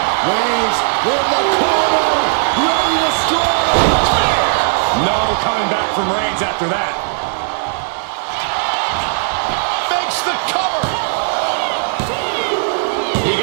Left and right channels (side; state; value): left; silent; 60 dB below the other